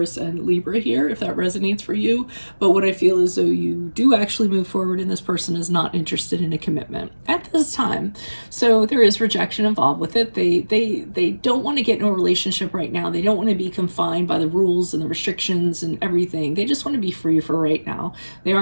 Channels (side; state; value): both; inverted; correlation -1.00